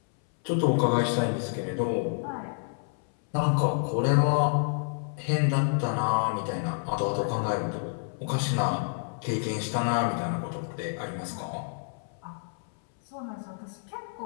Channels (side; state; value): right; silent; 59 dB below the other